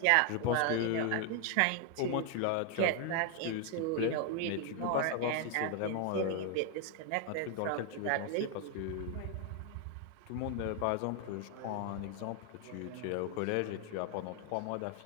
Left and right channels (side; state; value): both; different; correlation 0.01